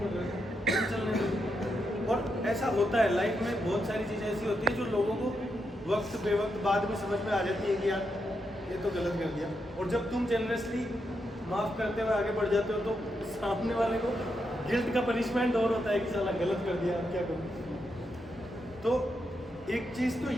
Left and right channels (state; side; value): normal; both; correlation 0.83